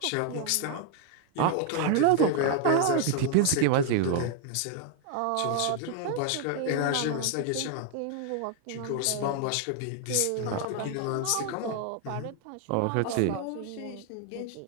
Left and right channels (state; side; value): different; both; correlation 0.00